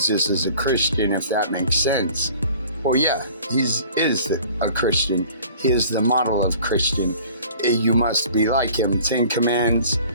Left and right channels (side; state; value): both; inverted; correlation -0.48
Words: is a Christian, if that makes sense, well, yeah, he is a Christian. He is the model of Christian. You must be like him. 10 commands,